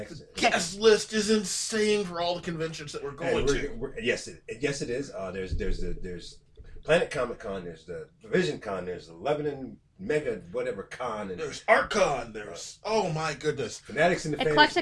Guest list is insane for all the conventions that we're going to. Yes, it is. There's Planet Comic-Con, there's the VisionCon, there's the Lebanon Mega whatever con, and there's ArtCon, there's oh my goodness, Fanatics and the Fan.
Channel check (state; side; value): identical; both; correlation 1.00